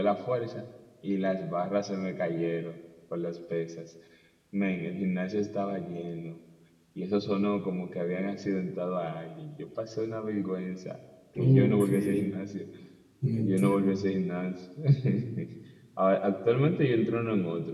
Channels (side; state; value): both; identical; correlation 1.00